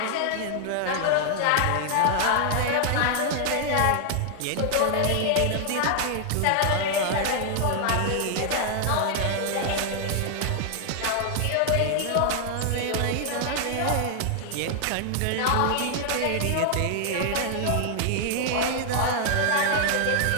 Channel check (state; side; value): different; both; correlation 0.00